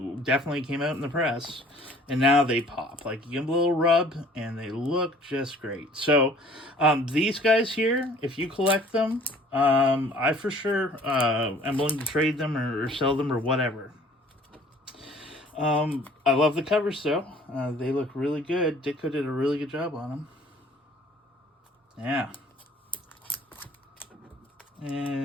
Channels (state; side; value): normal; both; correlation 0.53